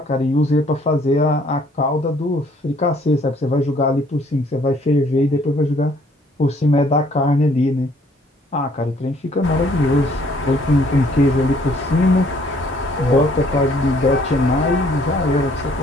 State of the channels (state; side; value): normal; both; correlation 0.62